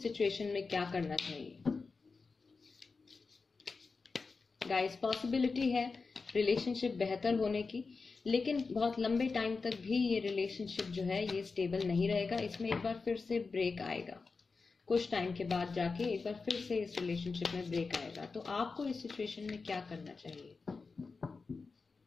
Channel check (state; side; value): quieter; right; 4.4 dB